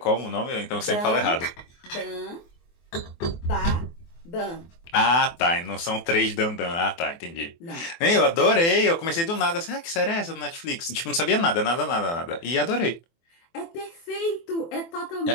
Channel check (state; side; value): late; right; 24 ms